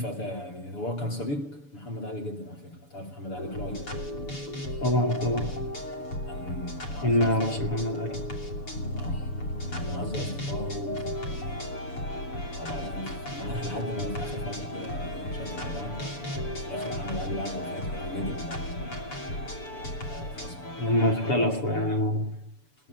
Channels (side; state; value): right; late; 6.9 ms